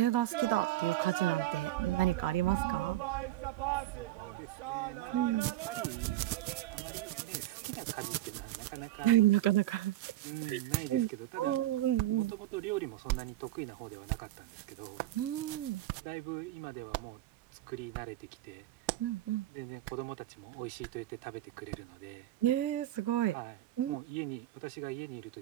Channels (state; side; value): quieter; left; 14.6 dB